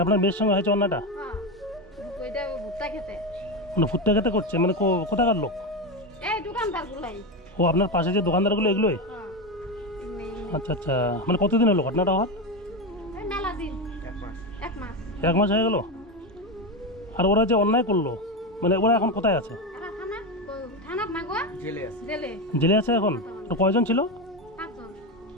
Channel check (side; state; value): both; normal; correlation 0.15